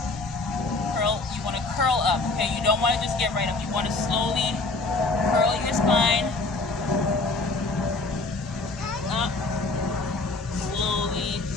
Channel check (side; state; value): right; quieter; 3.4 dB